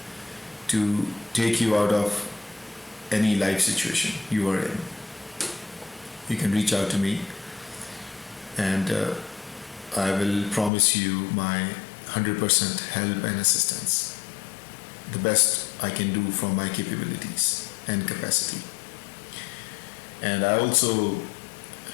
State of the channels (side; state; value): right; drops out; at 10.7 s